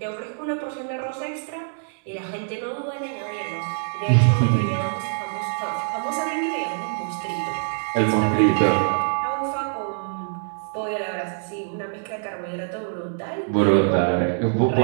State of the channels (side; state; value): left; silent; digital silence